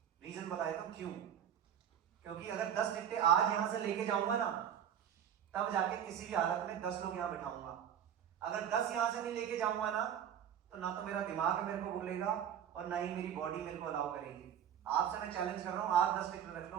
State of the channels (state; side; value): quieter; left; 9.3 dB